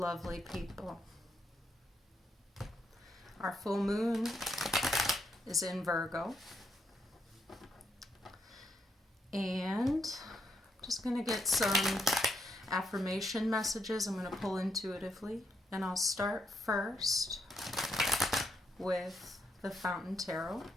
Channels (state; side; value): normal; both; correlation 0.77